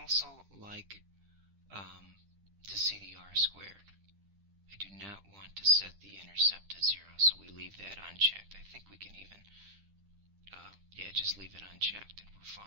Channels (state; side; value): late; left; 10 ms